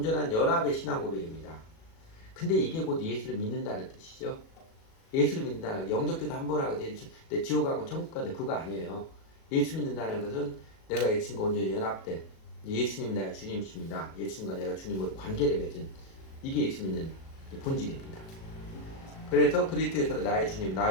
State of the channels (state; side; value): late; right; 37 ms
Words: 연합의 신앙 고백입니다. 근데 이게 곧 예수를 믿는다는 뜻이죠. 예수를 믿는다는 영접기도 한 번 하고 내 지옥 가고 천국 가는 그거 아니에요. 예수 믿는다는 것은 내가 예수님과 온전히 연합된 예수님이 나의 주님이십니다. 예수님과 내가 주님으로 관계를 맺은 이게 예수 믿는 본질입니다. 그래서 그리스도에서 나의 주님,